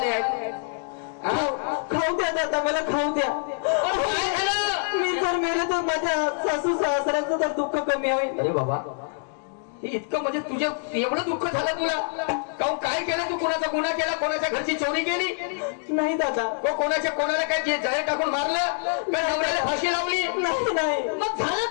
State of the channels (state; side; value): silent; right; digital silence